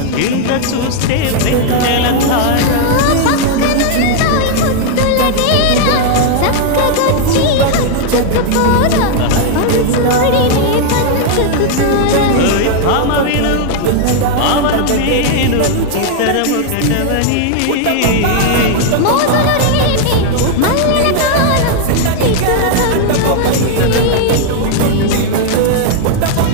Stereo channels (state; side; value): different; both; correlation 0.00